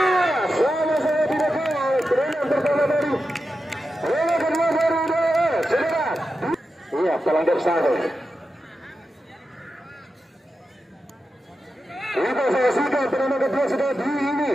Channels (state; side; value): normal; both; correlation 0.90